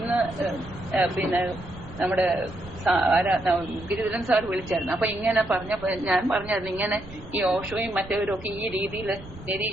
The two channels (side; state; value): right; noise; rumble, 18 dB below the sound